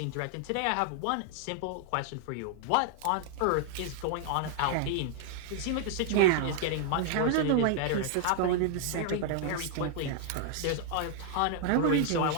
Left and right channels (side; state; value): both; different; correlation 0.00